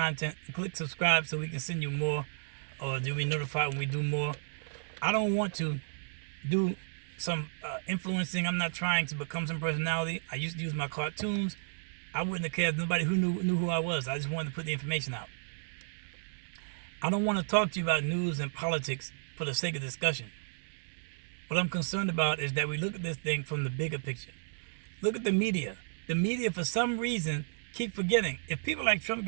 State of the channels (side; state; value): left; silent; digital silence